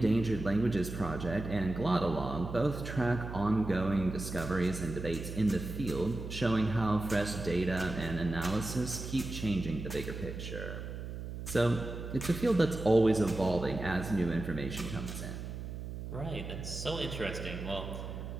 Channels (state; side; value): noise; right; hum, 8 dB below the sound